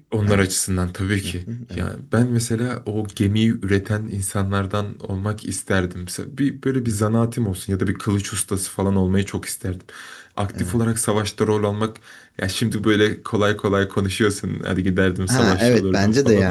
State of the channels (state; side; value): identical; both; correlation 1.00